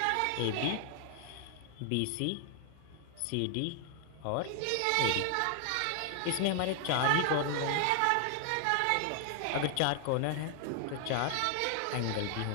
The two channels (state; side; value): different; both; correlation 0.00